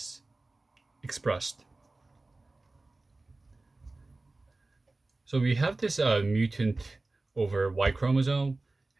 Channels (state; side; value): quieter; left; 3.2 dB